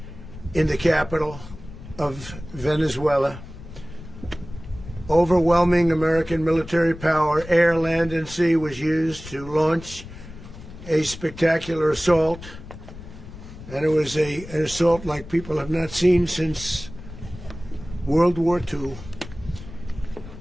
in the capital of Venezuela. Overwhelming American military power, air, land, and sea, was used to launch a spectacular assault. And it was an assault like people have not seen since World War II.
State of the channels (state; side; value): noise; left; rumble, 15 dB below the sound